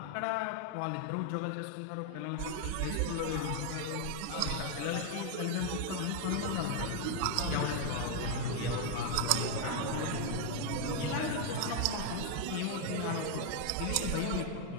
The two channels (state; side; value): different; both; correlation 0.01